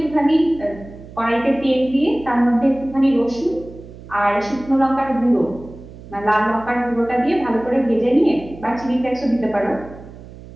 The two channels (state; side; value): noise; right; hum, 17 dB below the sound